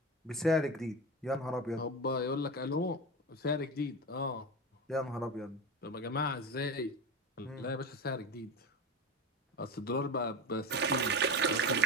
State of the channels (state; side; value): normal; both; correlation 0.23